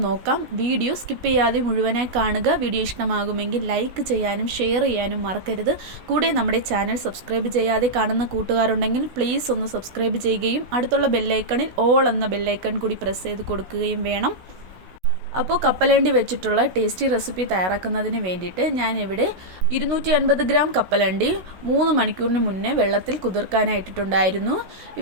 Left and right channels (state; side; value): late; left; 16 ms